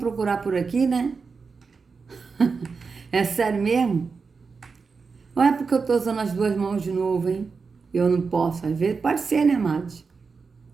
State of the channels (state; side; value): quieter; left; 4.9 dB